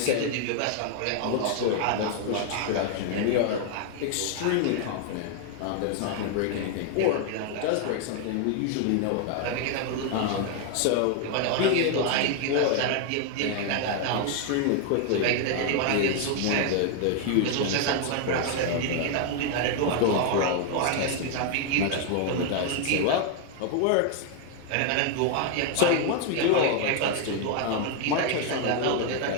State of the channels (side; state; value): both; different; correlation 0.00